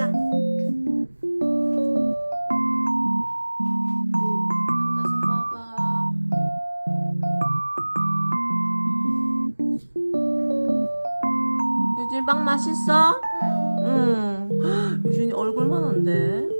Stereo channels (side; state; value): both; inverted; correlation -1.00